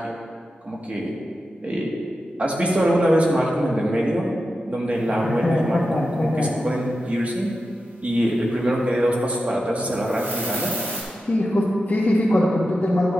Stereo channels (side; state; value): both; normal; correlation 0.90